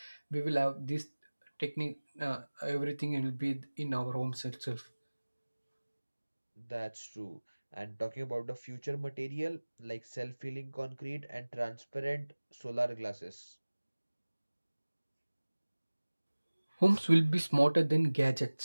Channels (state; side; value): inverted; both; correlation -1.00